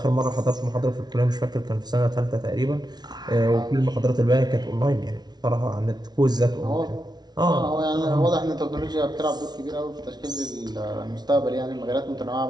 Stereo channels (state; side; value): late; left; 0.19 ms